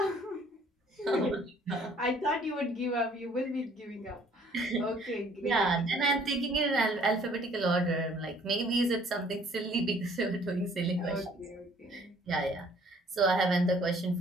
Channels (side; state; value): both; normal; correlation 0.58